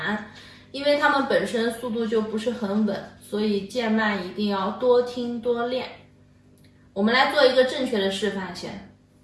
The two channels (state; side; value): identical; both; correlation 1.00